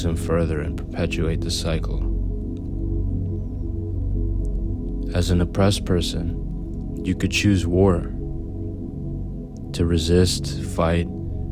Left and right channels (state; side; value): identical; both; correlation 1.00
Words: him further and perpetuate the cycle. As an oppressed person, you could choose war, to resist, fight,